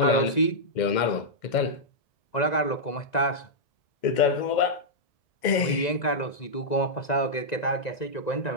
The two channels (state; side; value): late; right; 2.1 ms